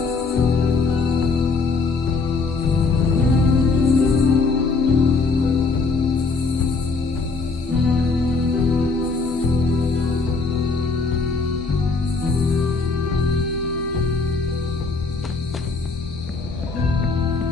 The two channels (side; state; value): right; quieter; 4.2 dB